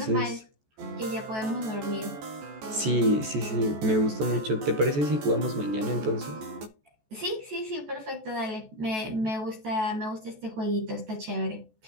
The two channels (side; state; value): left; late; 14 ms